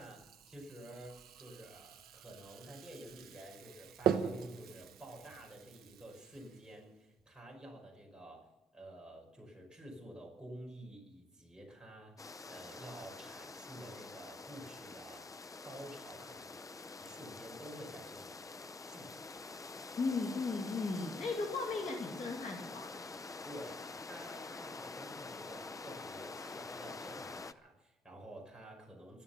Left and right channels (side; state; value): both; normal; correlation 0.66